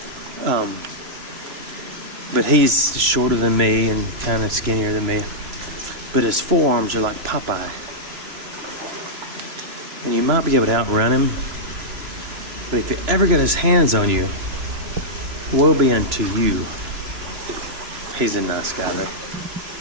But he's shorter than me and kind of skinnier than me. But his forearms are like Popeye. And you might be able to outrun him. But if he ever got his hands on you, woe be unto you. He's a nice guy though.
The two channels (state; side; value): late; left; 3.0 ms